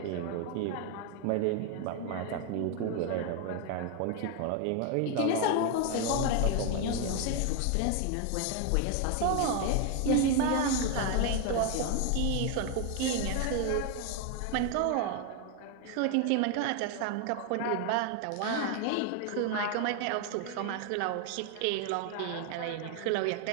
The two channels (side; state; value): both; different; correlation 0.01